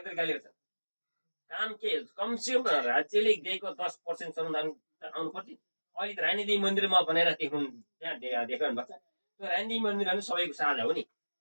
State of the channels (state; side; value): inverted; both; correlation -1.00